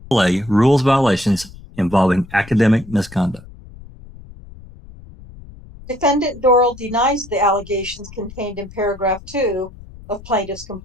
rules violations involving academic misconduct. Defendant Dorrel denies the allegations contained in paragraph 2 of plaintiff's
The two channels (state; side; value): noise; left; rumble, 18 dB below the sound